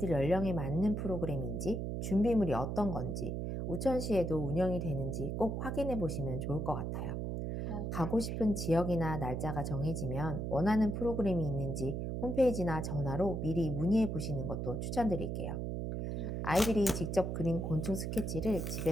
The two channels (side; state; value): right; noise; hum, 3 dB below the sound